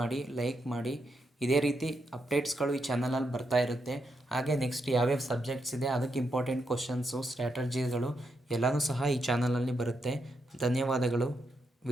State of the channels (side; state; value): both; normal; correlation 0.82